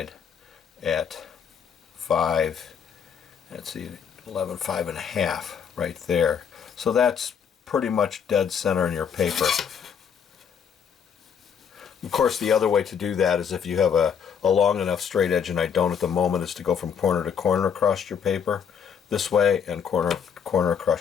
at 5, let's see, 11 5 1/2 right there. So that's pretty much dead center in your paper. Of course, the other way to do that is if you have a long enough straight edge, and I don't at the moment, is to go from corner to corner across your paper this way and corner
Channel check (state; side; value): quieter; right; 7.3 dB